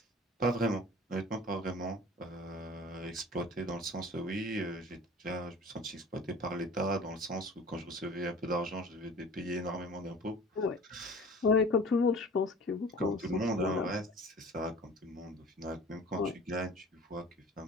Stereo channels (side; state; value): both; normal; correlation 0.43